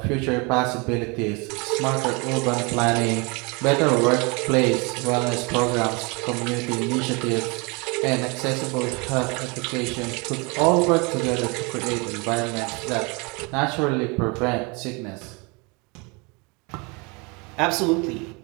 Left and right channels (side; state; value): left; quieter; 29.4 dB